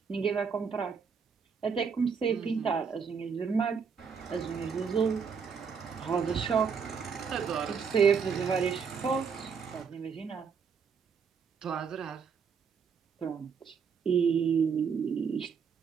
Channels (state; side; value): quieter; left; 6.1 dB